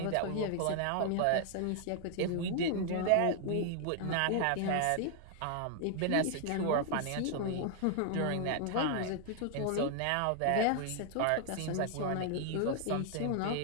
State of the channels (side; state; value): both; different; correlation 0.00